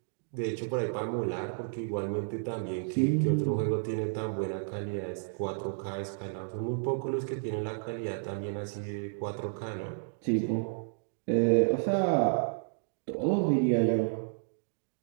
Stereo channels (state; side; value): silent; left; digital silence